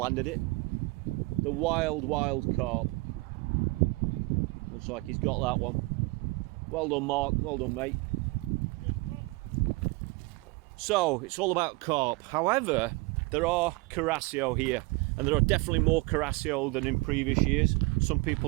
it. The wild carp. Looks like he's got that one. Well done, Mark. Well done, mate. So it's all about carp. However, there are Carasio here, and there are definitely more Carasio than in previous years. Some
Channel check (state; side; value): quieter; left; 25.0 dB